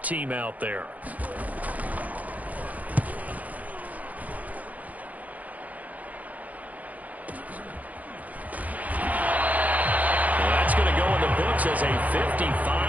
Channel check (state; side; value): late; left; 0.076 ms